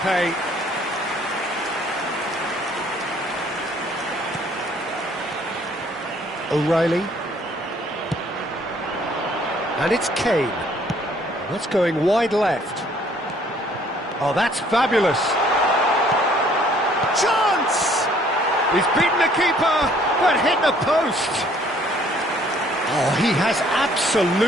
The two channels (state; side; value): normal; both; correlation 0.60